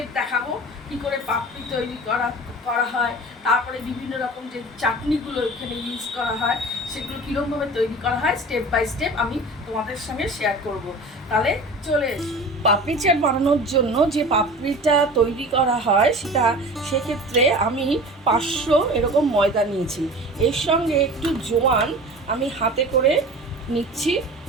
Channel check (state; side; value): normal; both; correlation 0.37